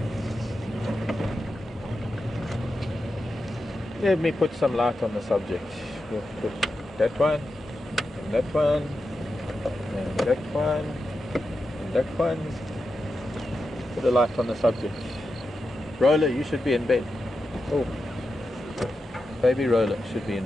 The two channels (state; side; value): normal; both; correlation 0.89